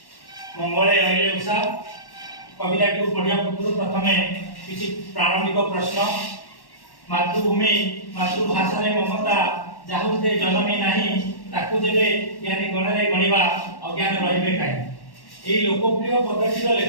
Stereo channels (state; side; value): late; right; 1.1 ms